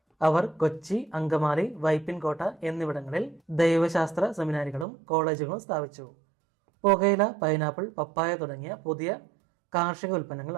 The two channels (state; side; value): drops out; left; at 4.9 s